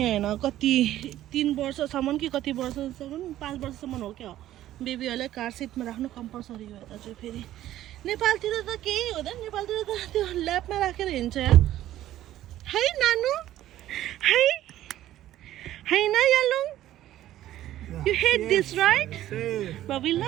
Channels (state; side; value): quieter; left; 13.4 dB